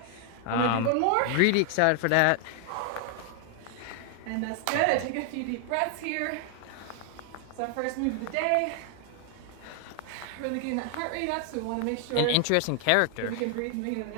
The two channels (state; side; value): different; both; correlation 0.00